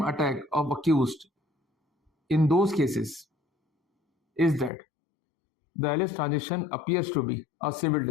attack of accused in those cases is that the alleged transaction appears to be a civil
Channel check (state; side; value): drops out; right; at 4.7 s